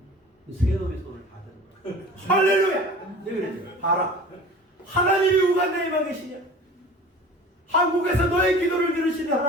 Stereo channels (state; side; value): normal; both; correlation 0.40